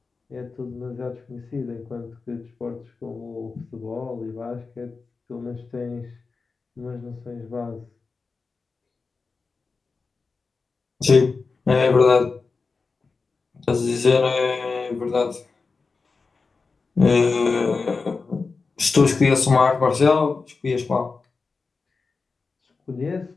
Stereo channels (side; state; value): right; quieter; 4.4 dB